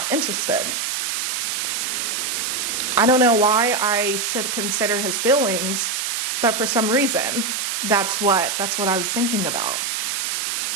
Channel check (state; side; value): noise; right; hiss, 1 dB below the sound